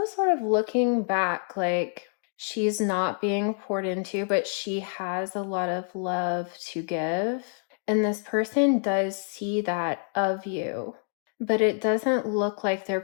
sort of looking back, like she's not being poured into, but she has a lot of love to give. And this person does see that of you, but it doesn't look like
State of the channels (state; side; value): silent; right; digital silence